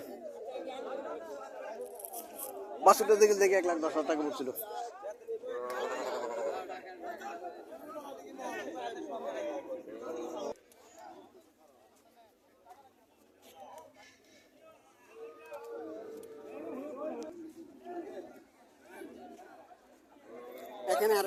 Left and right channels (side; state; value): both; identical; correlation 1.00